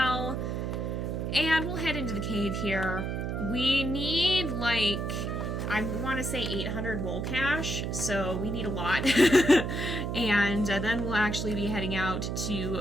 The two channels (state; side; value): noise; right; hum, 2 dB below the sound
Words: And we'll head into the cave here. We need, like, I want to say 800 mole cash, so we need a lot. And then we'll actually be heading out